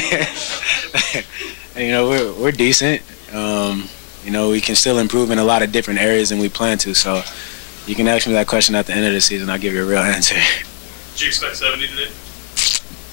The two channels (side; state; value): right; silent; digital silence